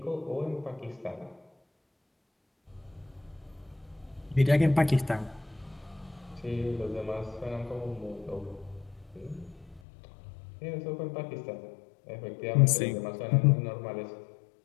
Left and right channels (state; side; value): drops out; right; at 9.8 s